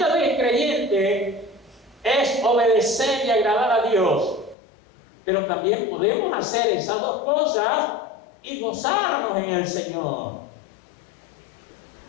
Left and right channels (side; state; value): right; drops out; at 4.5 s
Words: del creyente es obedecer y agradar a Dios. Pero también podemos hacer esas dos cosas y gozarnos en el Señor.